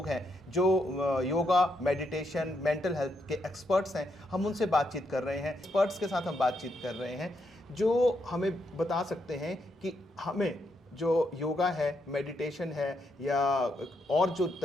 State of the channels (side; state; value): both; normal; correlation 0.79